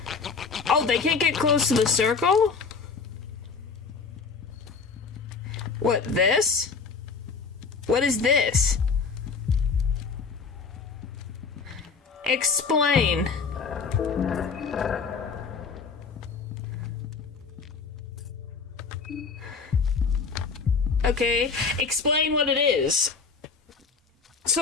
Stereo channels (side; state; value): right; quieter; 5.1 dB